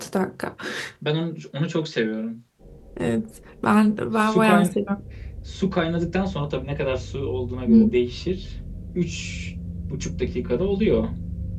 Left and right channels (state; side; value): identical; both; correlation 1.00